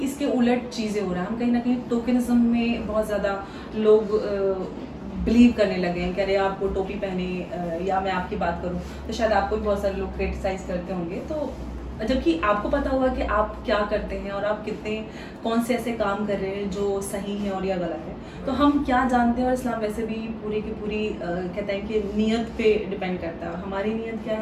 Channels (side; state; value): both; identical; correlation 1.00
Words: इसके उलट चीज़ें हो रहा है, हम कहीं ना कहीं टोकनिज्म में बहुत ज़्यादा लोग बिलीव करने लगे हैं कि अरे आप वो टोपी पहने या मैं आपकी बात करूं तो शायद आपको भी बहुत सारे लोग क्रिटिसाइज करते होंगे। तो जबकि आपको पता होगा कि आप क्या करते हैं और आप कितने कौन से ऐसे काम कर रहे हैं जो सही है और या गलत है। तो हम क्या जानते हैं, और इस्लाम वैसे भी पूरी की पूरी कहता है कि नीयत पे डिपेंड करता है, और हमारी नीयत क्या